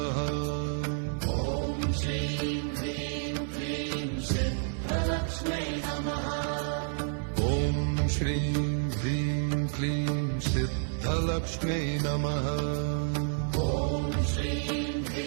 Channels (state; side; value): silent; left; 56 dB below the other